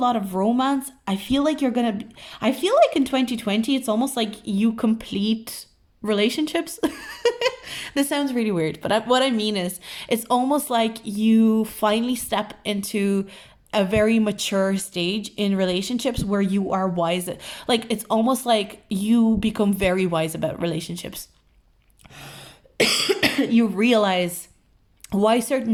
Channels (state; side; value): identical; both; correlation 1.00